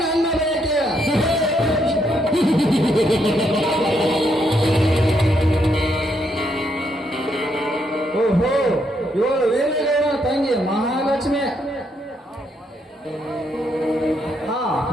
ನನ್ನ ಬಯಕೆ. ಓಹೋ, ಇವಳು ವೀರಗೌಡನ ತಂಗಿ ಮಹಾಲಕ್ಷ್ಮಿ. ಹಾ,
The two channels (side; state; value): both; normal; correlation 0.76